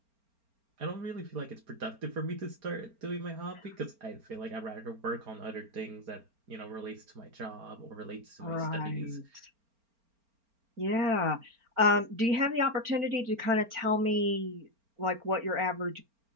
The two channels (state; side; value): late; left; 4.4 ms